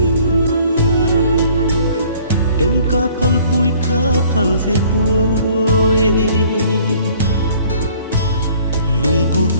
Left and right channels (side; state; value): both; inverted; correlation -0.55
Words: ken ka phal se pui lung cuộc